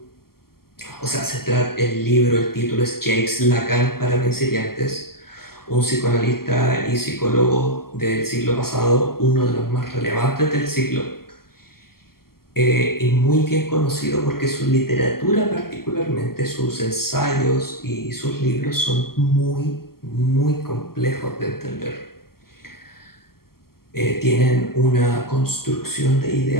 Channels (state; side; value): late; right; 0.93 ms